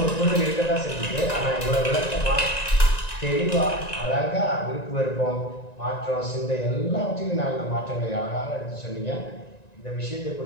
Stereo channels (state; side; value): late; right; 1.9 ms